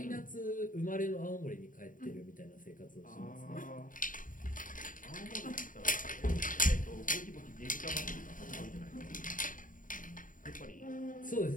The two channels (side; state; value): right; late; 0.39 ms